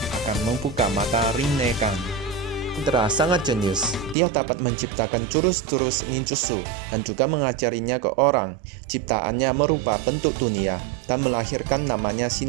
akan membuka mata Rinnegan. Indra sangat jenius. Dia dapat menciptakan jurus-jurus ninjutsu dan juga mengajarinya ke orang. Ciptaannya merubah bentuk dunia dan melahirkan namanya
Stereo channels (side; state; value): left; drops out; at 4.2 s